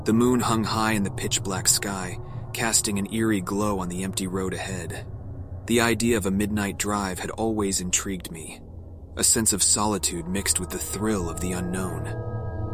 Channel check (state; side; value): identical; both; correlation 1.00